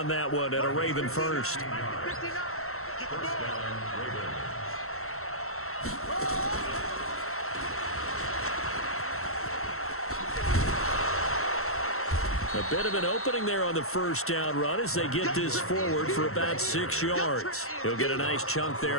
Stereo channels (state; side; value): late; right; 0.63 ms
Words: that one, and a Raven first. A bit of an opening there on the first down run as they get this forward for about 6 yards. He'll get a nice chunk